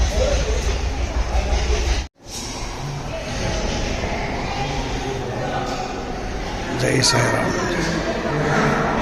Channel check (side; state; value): both; identical; correlation 1.00